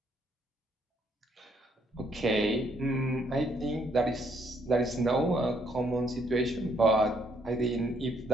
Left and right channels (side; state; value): both; normal; correlation 0.71